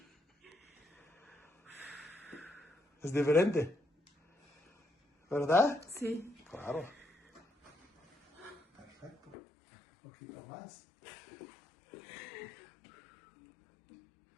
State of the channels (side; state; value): right; drops out; at 9.3 s